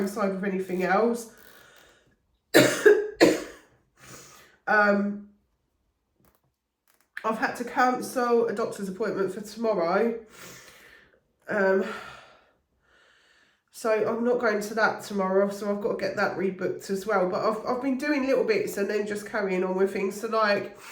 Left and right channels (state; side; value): identical; both; correlation 1.00